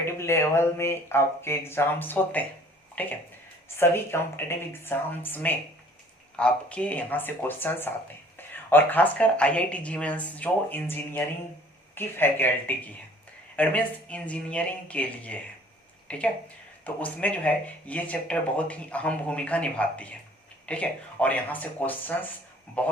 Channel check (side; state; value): both; normal; correlation 0.54